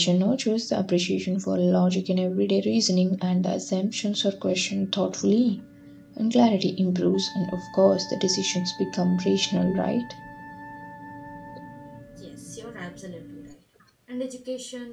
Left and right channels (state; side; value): identical; both; correlation 1.00